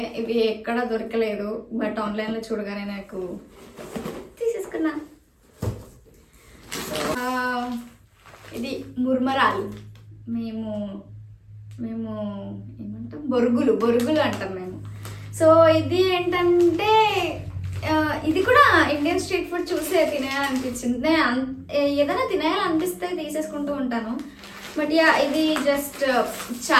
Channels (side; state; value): both; identical; correlation 1.00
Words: ఇవి ఎక్కడ దొరకలేదు, బట్ ఆన్లైన్లో చూడగానే నాకు తీసేసుకున్నా. ఇది ముర్మరాలు, మేము ఏమంటాం, బొరుగులు అంటాం మేము. సో ఇది ఏంటంటే ఇది కూడా ఇండియన్ స్ట్రీట్ ఫుడ్ చూసే తినేయాలనిపించింది. నేను ఏదైనా తినేయాలనిపిస్తే తీసేసుకుంటూ ఉంటాను. బట్ యా, ఇది జస్ట్